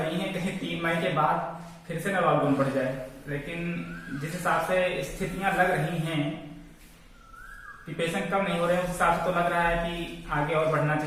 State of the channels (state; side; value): identical; both; correlation 1.00